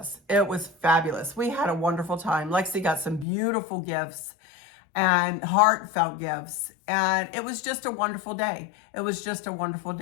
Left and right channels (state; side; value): drops out; right; at 3.2 s